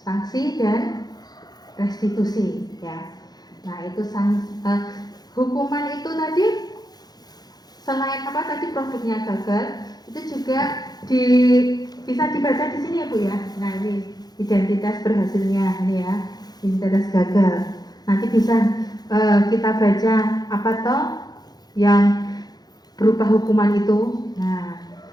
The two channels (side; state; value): right; late; 0.19 ms